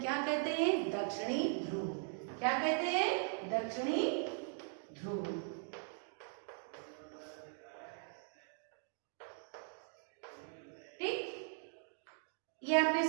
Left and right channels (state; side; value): silent; left; 51 dB below the other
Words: कहते हैं? दक्षिणी ध्रुव। क्या कहते हैं? दक्षिणी ध्रुव। ठीक, ये आपने